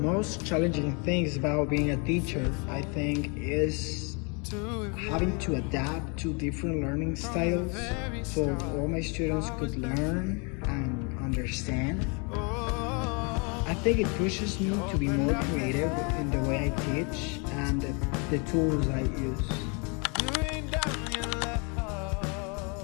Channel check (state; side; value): quieter; right; 33.5 dB